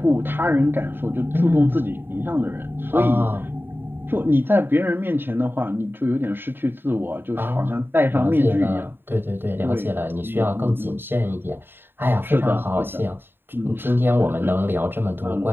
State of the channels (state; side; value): late; left; 0.099 ms